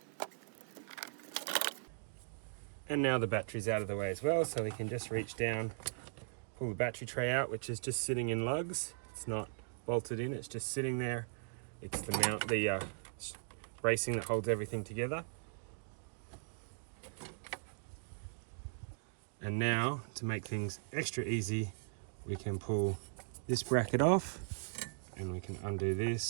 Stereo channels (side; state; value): left; silent; digital silence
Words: And now the battery's out of the way as well, so we can just reach down, pull the battery tray out, which is just sitting in lugs. It's not bolted in, it's just sitting there. It's the mount, the bracing that holds everything together. And now, to make things extra easy, we can pull this bracket off, and we can undo